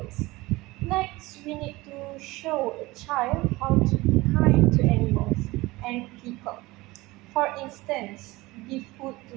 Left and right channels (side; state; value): left; quieter; 20.7 dB